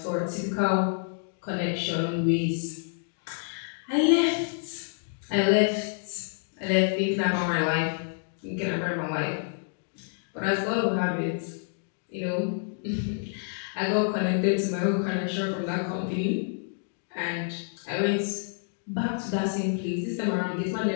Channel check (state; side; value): silent; right; 59 dB below the other